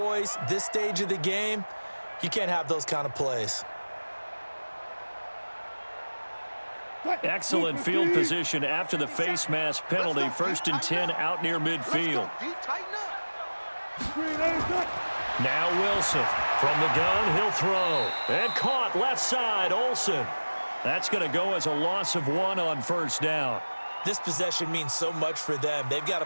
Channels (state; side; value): inverted; both; correlation -1.00